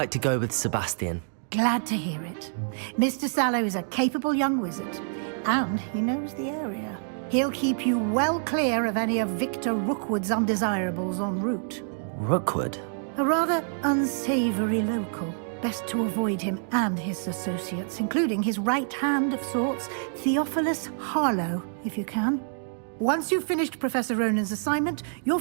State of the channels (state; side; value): silent; left; digital silence